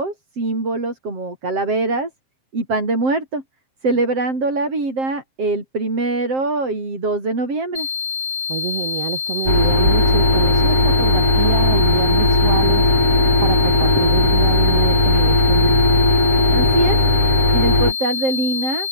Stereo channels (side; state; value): left; late; 7.6 ms